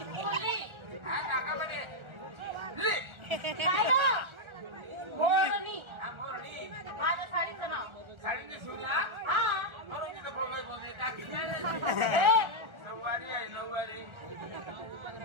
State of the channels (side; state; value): left; late; 1.4 ms